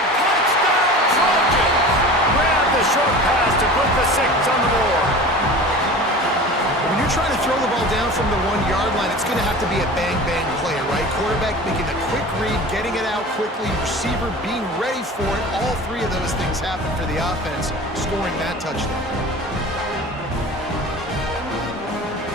Touchdown, Trojans! Grab the short pass to put the 6 on the board. When you're trying to throw the ball down from the 1-yard line, it's going to have to be a bang-bang play, right? Quarterback making a quick read, getting it out quickly, receiver being ready for it. All 3 of those things happen for the offense, scoring that touchdown.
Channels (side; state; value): both; normal; correlation 0.37